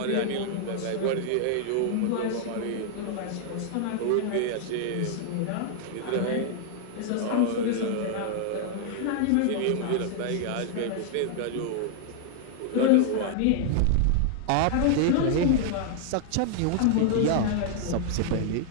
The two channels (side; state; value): both; different; correlation -0.01